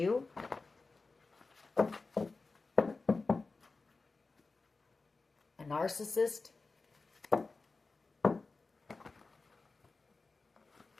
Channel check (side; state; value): right; quieter; 3.8 dB